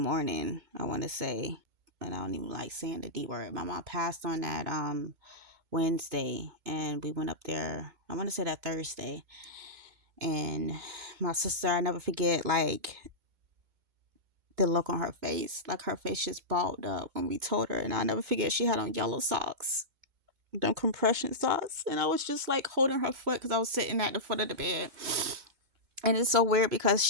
I want to say, and I don't even like saying the D word. My mom passed on that Wednesday, and we went up there, I want to say that Thursday. And my sister, I never forget, like, the look on her face. Like, her face just balled up when we told her. And I'll never forget, she had on yellow socks, them compression socks. And I was just, like, holding her foot because I was sitting at the foot of the bed. And it's so weird because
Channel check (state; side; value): late; left; 2.2 ms